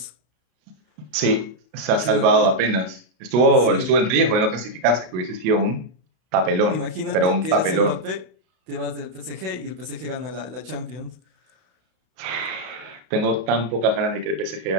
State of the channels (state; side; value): late; left; 33 ms